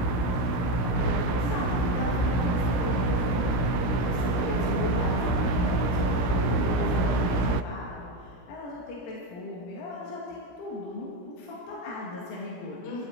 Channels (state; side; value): late; right; 17 ms